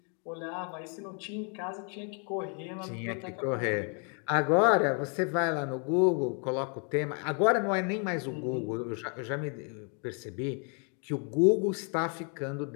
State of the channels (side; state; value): right; quieter; 39.5 dB